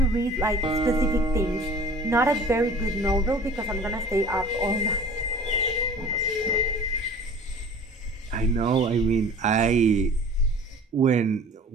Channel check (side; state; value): both; normal; correlation 0.44